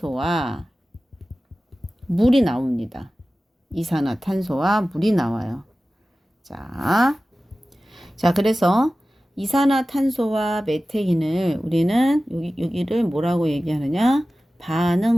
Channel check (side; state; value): both; normal; correlation 0.96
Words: 물이 나옵니다. 이산화탄소와 물이 나와요. 자, 그래서 이산화탄소와 메테인을 우리는 여기를 뭐라고 얘기하느냐?